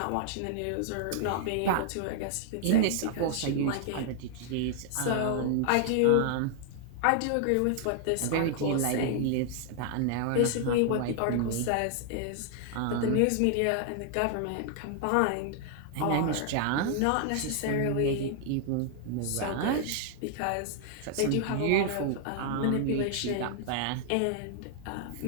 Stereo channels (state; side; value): different; both; correlation 0.00